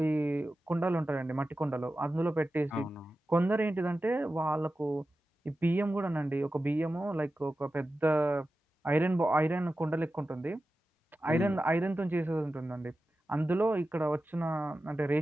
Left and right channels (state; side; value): normal; both; correlation 0.93